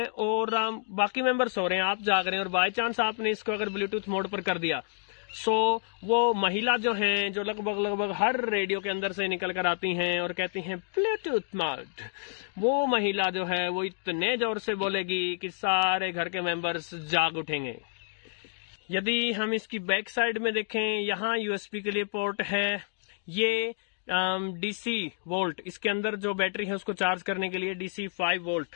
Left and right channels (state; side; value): silent; right; digital silence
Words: और बाकी मेंबर सो रहे हैं, आप जाग रहे हैं, और बाय चांस आपने इसको अगर ब्लूटूथ मोड पर कर दिया, सो वो महिला जो हैं, जो लगभग हर रेडियो के अंदर से निकल कर आती हैं और कहती हैं ब्लूटूथ मोड, वो महिला जो है वो इतने जोर से बोलेगी कि सारे घर के मेंबर्स जाग उठेंगे। यदि हम इसकी बैक साइड में देखें, यहाँ USB के लिए पोर्ट है। ये DC वोल्ट, इसके अंदर जो बैटरी है उसको चार्ज करने के लिए DC 5 वोल्ट,